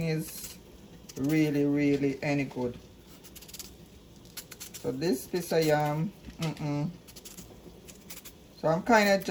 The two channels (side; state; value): both; identical; correlation 1.00